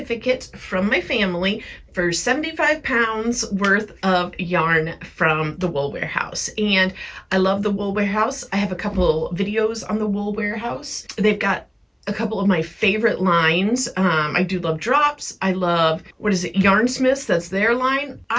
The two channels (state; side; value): identical; both; correlation 1.00